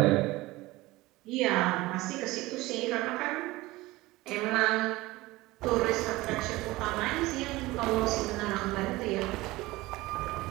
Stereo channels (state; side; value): quieter; left; 19.6 dB